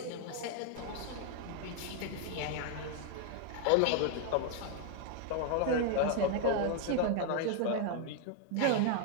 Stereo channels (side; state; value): both; different; correlation 0.01